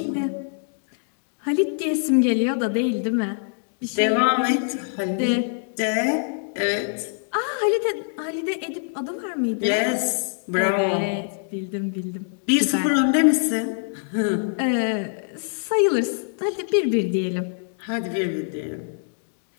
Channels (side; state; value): right; silent; 62 dB below the other